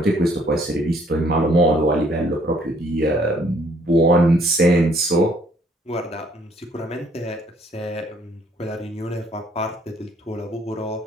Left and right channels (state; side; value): normal; both; correlation 0.64